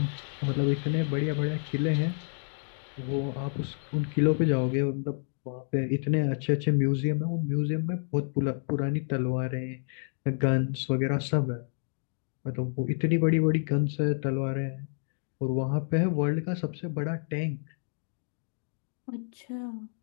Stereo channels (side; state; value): right; silent; 58 dB below the other